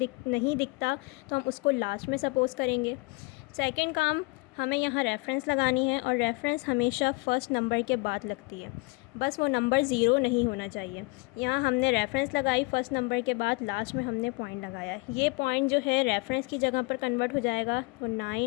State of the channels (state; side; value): quieter; right; 26.5 dB